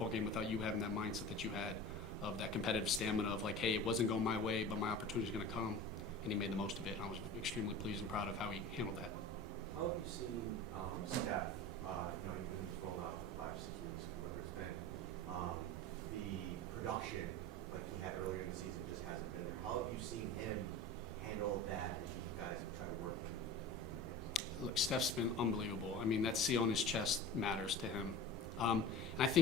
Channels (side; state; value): both; normal; correlation 0.34